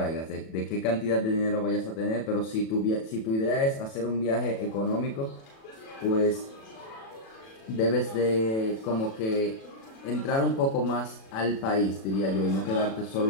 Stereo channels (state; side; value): late; right; 36 ms